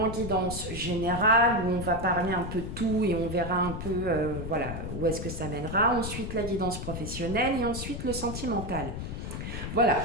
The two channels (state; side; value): noise; left; rumble, 6 dB below the sound